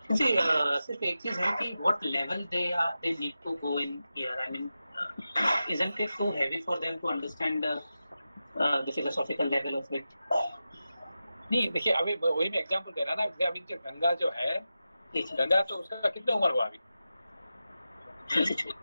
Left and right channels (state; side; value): inverted; both; correlation -0.92